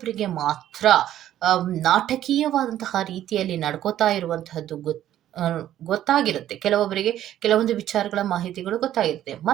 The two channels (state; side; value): quieter; left; 12.1 dB